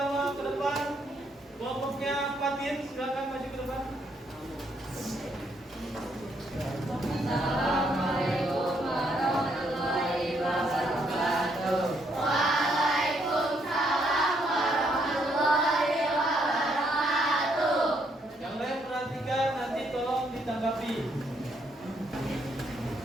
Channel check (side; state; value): both; normal; correlation 0.72